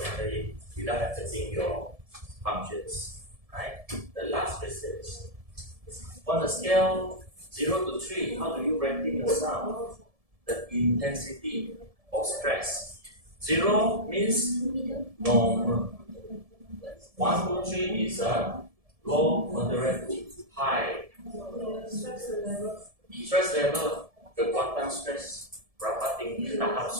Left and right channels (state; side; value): late; left; 1.7 ms